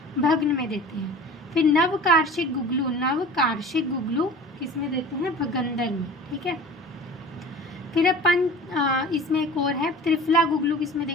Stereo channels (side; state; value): both; normal; correlation 0.41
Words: भग्न में देते हैं। फिर नवकार्षिक गुगलू, नवकार्षिक गुगलू किसमें देते हैं, भगंदर में, ठीक है। फिर अब इसमें एक और है त्रिफला गुगलू, किसमें